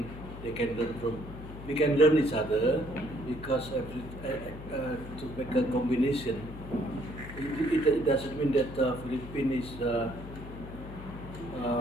they can learn from. We can learn each other because to make a combination. It doesn't mean that Philippines is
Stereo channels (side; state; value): left; noise; hum, 12 dB below the sound